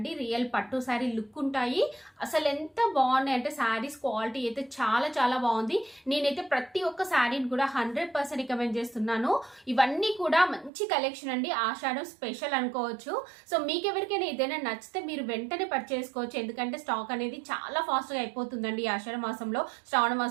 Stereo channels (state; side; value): drops out; left; at 10.7 s